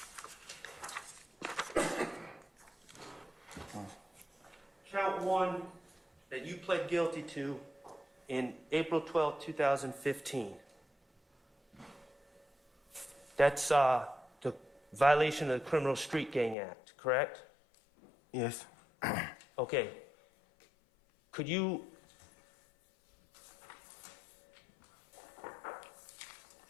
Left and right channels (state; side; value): drops out; right; at 16.6 s